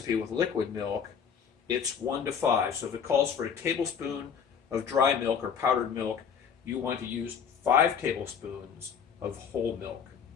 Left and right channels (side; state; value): right; quieter; 7.1 dB